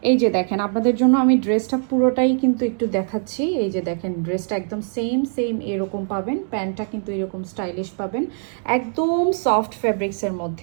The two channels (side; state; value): left; silent; 55 dB below the other